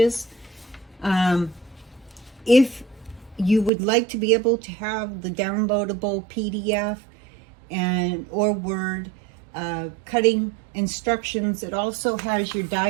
If you would like to be able to have the downloadable PDF or Word cutting instructions, it also has your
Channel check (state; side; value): drops out; left; at 3.7 s